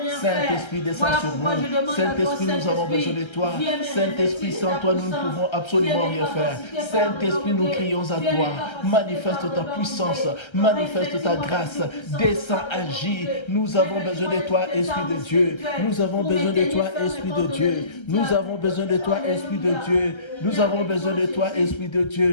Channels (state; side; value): late; right; 1.3 ms